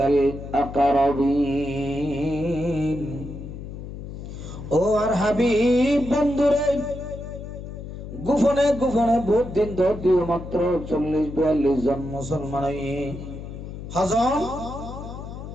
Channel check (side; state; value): left; noise; hum, 10 dB below the sound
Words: আকরাবিন। ও আর হাবিব বন্ধুরে গোপনে গোপনে ভোট দিন দিও মাত্র 40-42 জন মুসলমান হাজন